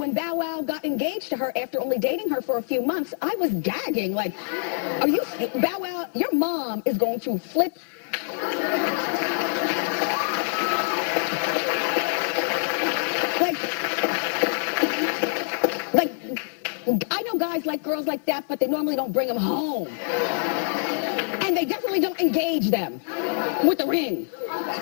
Bow Wow got engaged to her after only dating her for a few months, I was gagging. Like, Bow Wow, your mom is going to flip. Like, I know guys like girls like that, but they normally don't bring them home. And they definitely don't engage them with the ring.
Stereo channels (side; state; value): right; silent; digital silence